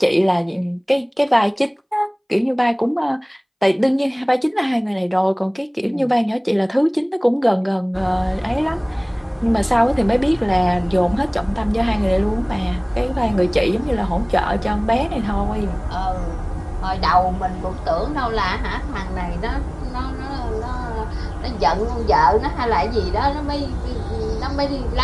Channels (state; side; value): identical; both; correlation 1.00